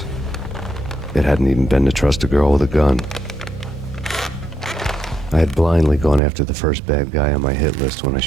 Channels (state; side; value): drops out; left; at 6.2 s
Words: It hadn't even been to trust a girl with a gun. I had blindly gone after the first bad guy on my hit list when I